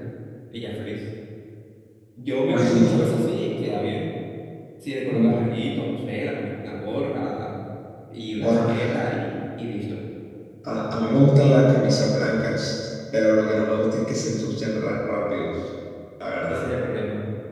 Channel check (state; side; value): identical; both; correlation 1.00